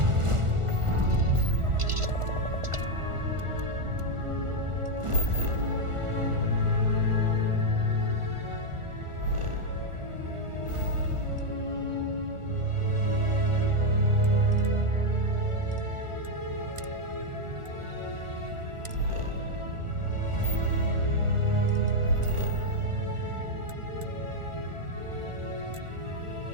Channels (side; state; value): left; late; 1.4 ms